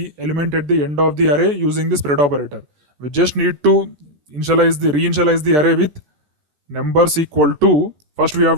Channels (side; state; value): left; late; 14 ms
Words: element at the end of the array using the spread operator. We just need to reinitialize the array with numbers equal to, first we